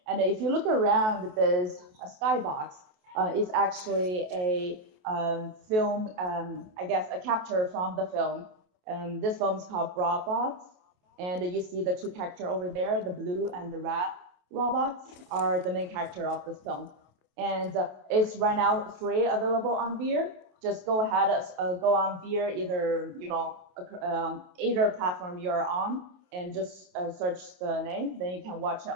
And if you look around this skybox, it's actually a film, I guess, a capture from the film. This film is called Robots, and you see the two characters over there, the blue and the red robots are the main character of this film. And it's right now free, available on VR. Just go ahead, go on VR, either either platform you're on, and just search the name. Then you can watch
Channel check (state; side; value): late; left; 28 ms